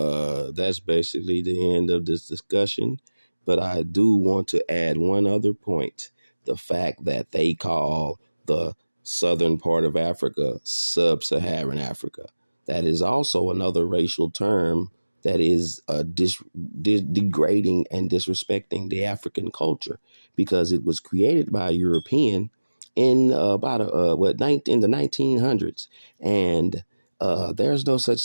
that's basically the end of this discussion. But I do want to add one other point. The fact that they call the southern part of Africa sub-Saharan Africa. That is also another racial term that is degrading and disrespecting the African culture, because it was created by a European in in the 1900s, and there's no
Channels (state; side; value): inverted; both; correlation -1.00